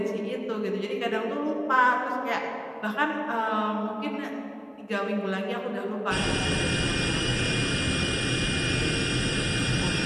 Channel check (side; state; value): both; identical; correlation 1.00